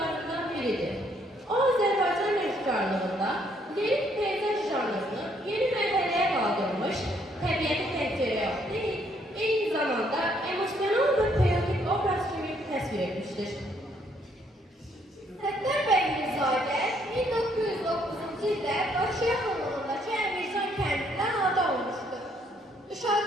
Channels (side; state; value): both; normal; correlation 0.68